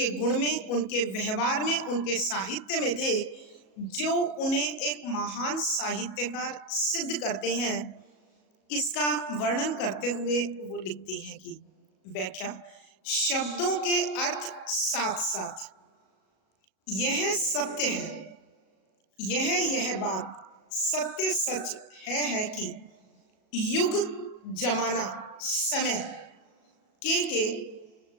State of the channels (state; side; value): late; right; 37 ms